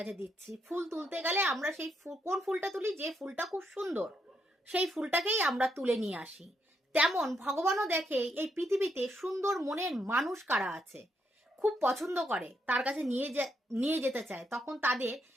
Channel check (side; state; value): both; normal; correlation 0.78